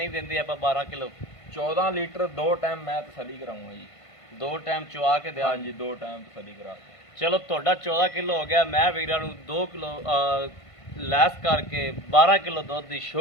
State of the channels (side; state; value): right; late; 1.5 ms